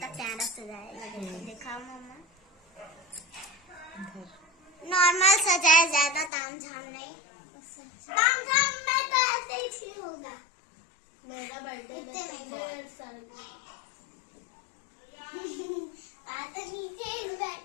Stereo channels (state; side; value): drops out; right; at 6.3 s